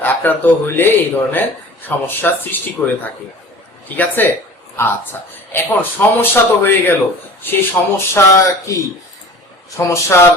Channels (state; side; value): normal; both; correlation 0.42